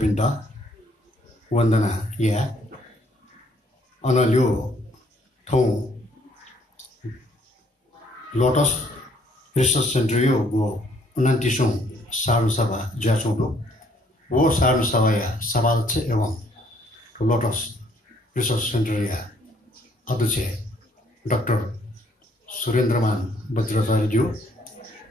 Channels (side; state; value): both; normal; correlation 0.65